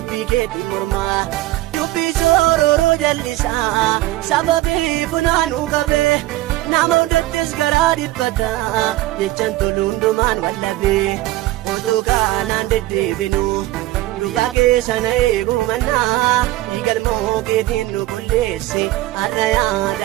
keetti mormaa. Bisooroo jallisaa sababii funaanuu qabee nama hundattis garaa dhiphataa jechaan toluundumaan wallabee otoo kaanaan deddeebinu guyyaa keessa na eeguu mannaa dhiigalmoo keetiin nu qulleessi har'a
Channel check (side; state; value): left; quieter; 16.8 dB